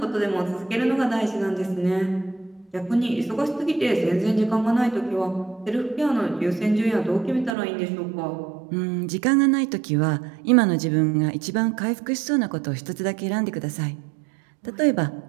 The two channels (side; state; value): left; drops out; at 7.6 s